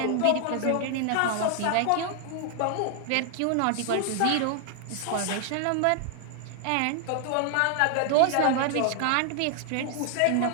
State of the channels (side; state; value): both; different; correlation 0.00